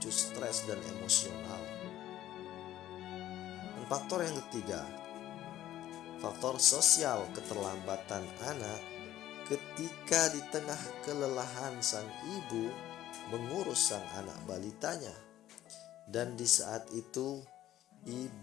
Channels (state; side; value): quieter; right; 13.2 dB